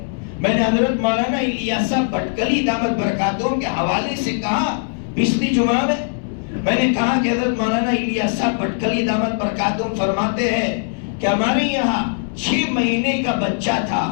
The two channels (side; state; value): right; silent; digital silence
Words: میں نے حضرت مولانا الیاس صاحب بٹکلی دامت برکاتہم کے حوالے سے کہا پچھلی جمعہ میں نے کہا کہ حضرت مولانا الیاس صاحب بٹکلی دامت برکاتہم فرماتے ہیں کہ ہمارے یہاں 6 مہینے کا بچہ تھا،